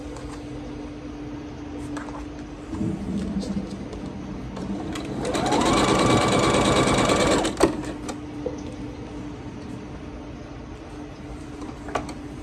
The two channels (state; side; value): identical; both; correlation 1.00